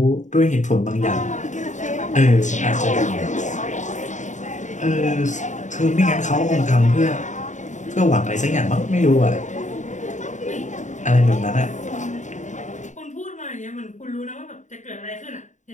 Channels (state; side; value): late; right; 0.35 ms